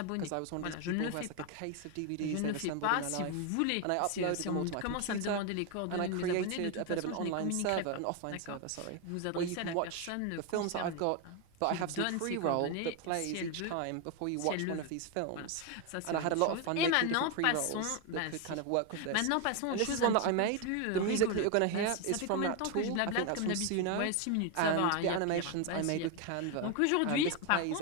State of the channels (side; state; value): both; different; correlation 0.01